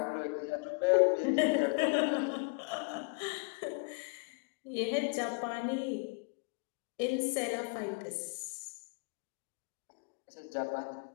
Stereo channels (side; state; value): right; quieter; 34.3 dB